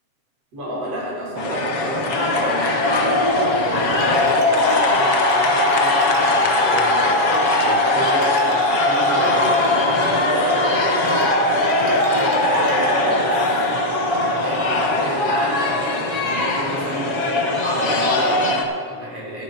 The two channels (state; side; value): late; left; 7.2 ms